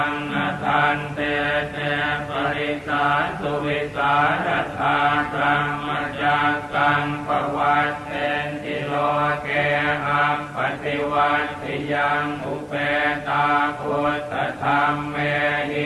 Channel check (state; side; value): identical; both; correlation 1.00